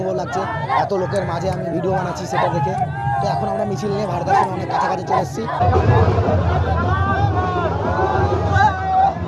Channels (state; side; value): identical; both; correlation 1.00